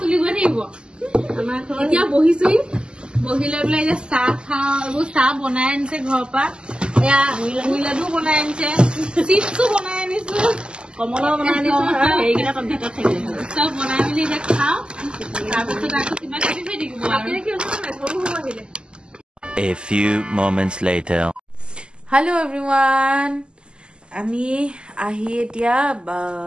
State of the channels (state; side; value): late; left; 0.049 ms